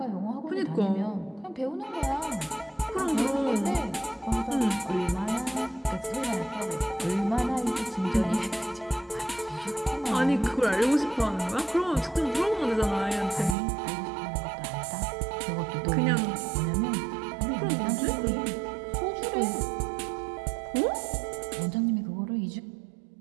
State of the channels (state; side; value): drops out; left; at 13.6 s